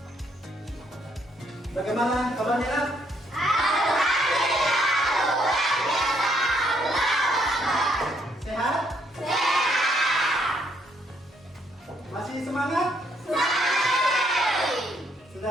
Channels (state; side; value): normal; both; correlation 0.71